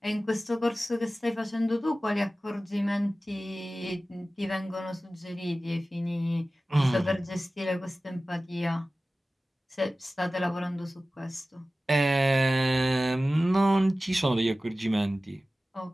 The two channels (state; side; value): normal; both; correlation 0.96